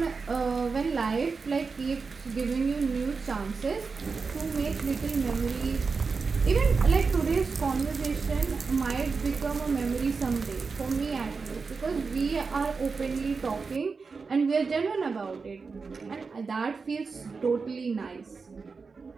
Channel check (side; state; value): left; quieter; 4.7 dB